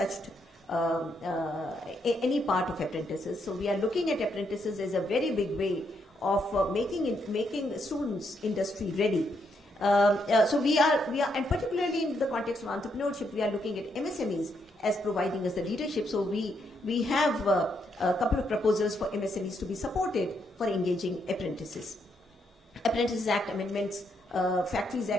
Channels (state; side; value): normal; both; correlation 0.77